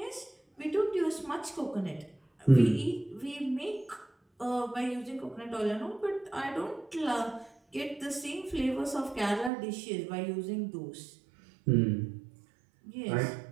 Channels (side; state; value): left; drops out; at 9.5 s